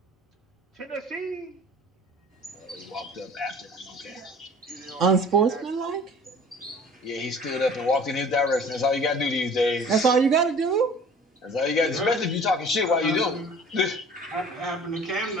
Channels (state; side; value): normal; both; correlation 0.47